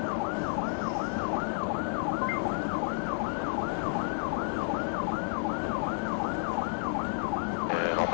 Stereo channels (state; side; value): silent; right; digital silence